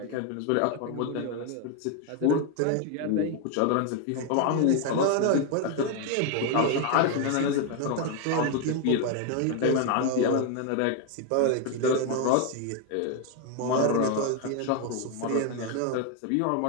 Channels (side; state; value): both; different; correlation 0.01